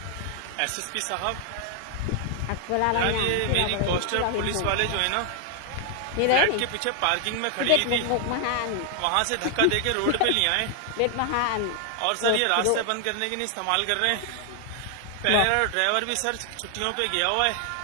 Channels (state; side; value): different; both; correlation 0.00